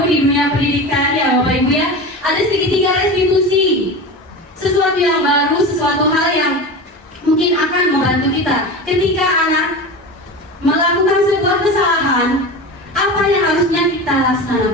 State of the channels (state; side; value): normal; both; correlation 0.28